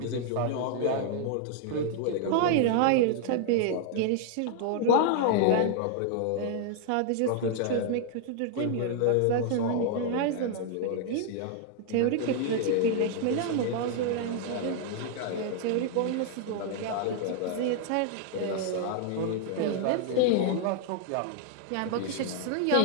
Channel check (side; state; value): both; different; correlation -0.01